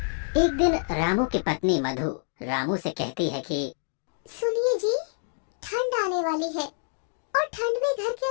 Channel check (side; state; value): right; silent; digital silence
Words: एक दिन रामू की पत्नी मधु रामू से कहती है कि सुनिए जी, ठंड आने वाली है और ठंड में घर के